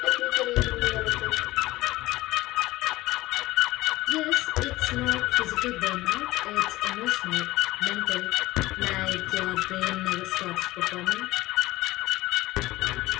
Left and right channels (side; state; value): right; quieter; 18.1 dB